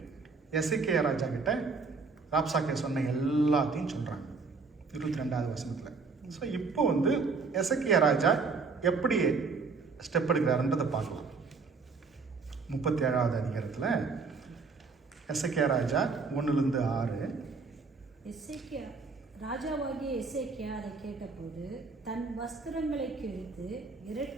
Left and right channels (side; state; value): left; quieter; 4.5 dB